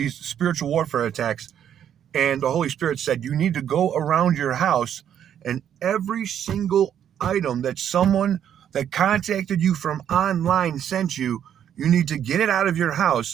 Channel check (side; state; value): left; quieter; 9.5 dB